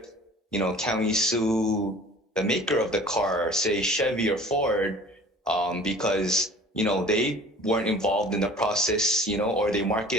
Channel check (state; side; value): normal; both; correlation 0.46